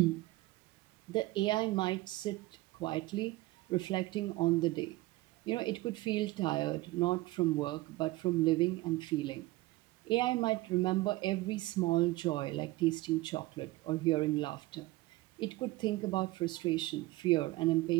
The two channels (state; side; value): quieter; left; 19.3 dB